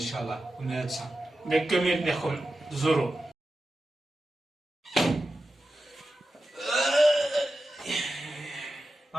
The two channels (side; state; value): both; normal; correlation 0.92